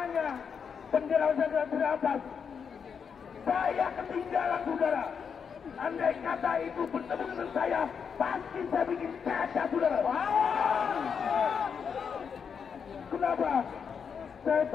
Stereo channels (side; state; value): right; quieter; 6.6 dB